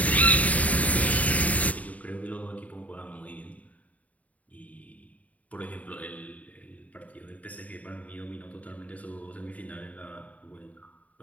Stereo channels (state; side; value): late; right; 0.070 ms